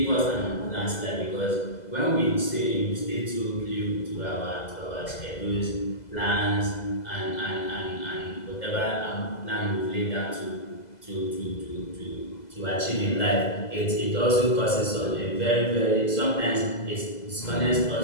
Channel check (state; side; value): late; right; 2.0 ms